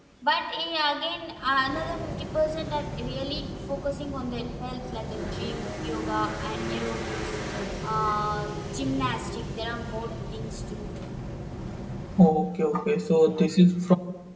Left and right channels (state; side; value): identical; both; correlation 1.00